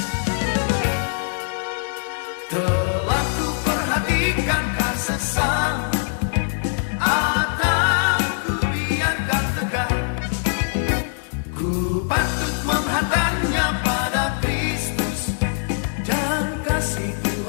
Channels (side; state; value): right; silent; digital silence